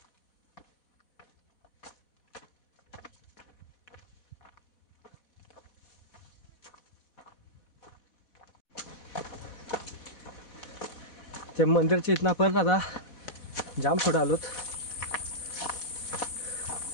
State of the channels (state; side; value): late; right; 4.1 ms